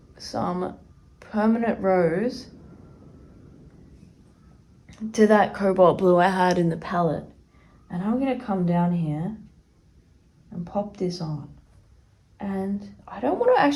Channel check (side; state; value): both; identical; correlation 1.00